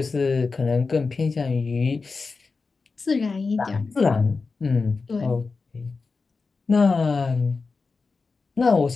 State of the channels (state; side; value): quieter; right; 4.3 dB